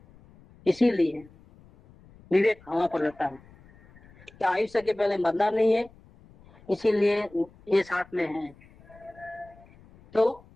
इसीलिए विवेक हवा पर रहता है कि आयुष्य के पहले मरना नहीं है, इसीलिए ये साथ में है तो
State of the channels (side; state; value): left; noise; rumble, 26 dB below the sound